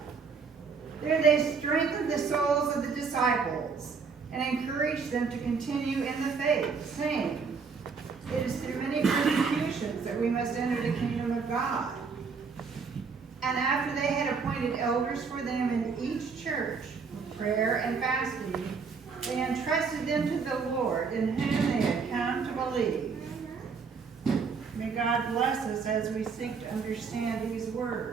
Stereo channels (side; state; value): left; quieter; 5.3 dB